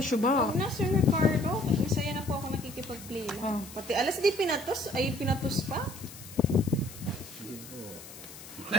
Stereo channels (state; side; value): noise; left; hiss, 16 dB below the sound